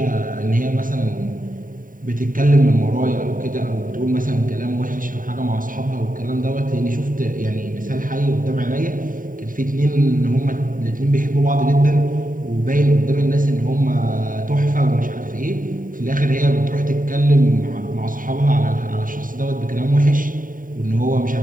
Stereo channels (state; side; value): late; left; 0.39 ms